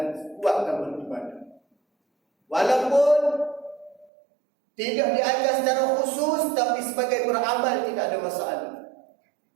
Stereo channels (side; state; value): left; drops out; at 4.1 s